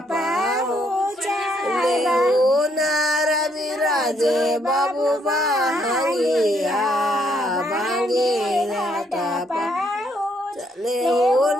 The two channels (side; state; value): both; normal; correlation 0.71